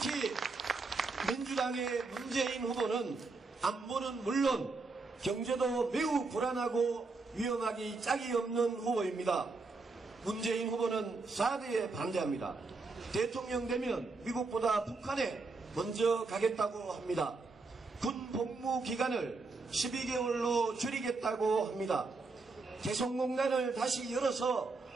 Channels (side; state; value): left; quieter; 3.8 dB